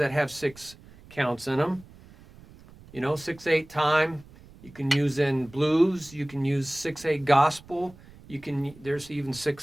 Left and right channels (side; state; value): right; noise; rumble, 22 dB below the sound